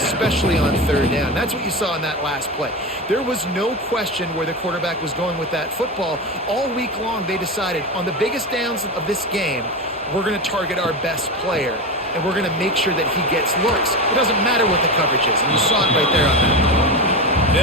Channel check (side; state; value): both; normal; correlation 0.20